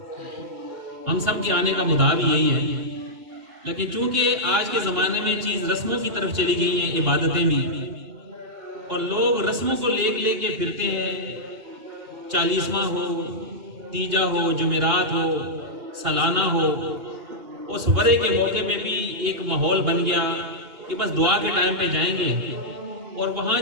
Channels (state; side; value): late; left; 2.8 ms